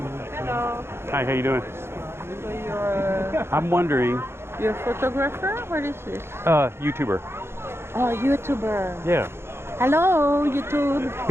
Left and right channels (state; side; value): late; left; 0.12 ms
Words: Hello. Hi, how you doing? So you're I'm wondering, you're a photographer? What is this? YouTuber. Oh, YouTuber. Yeah. Hello, YouTube.